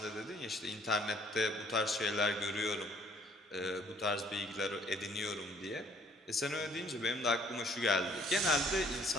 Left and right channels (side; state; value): both; normal; correlation 0.60